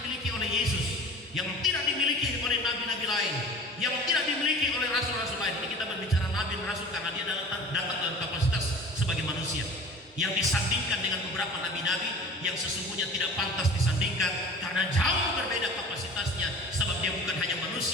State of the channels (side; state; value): both; normal; correlation 0.41